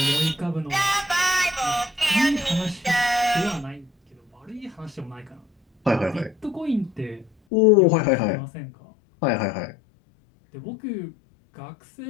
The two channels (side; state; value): right; drops out; at 7.3 s